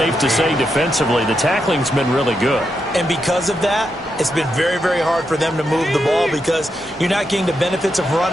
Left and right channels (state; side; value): normal; both; correlation 0.84